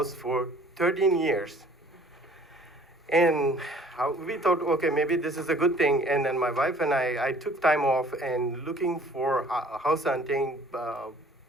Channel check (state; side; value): normal; both; correlation 0.53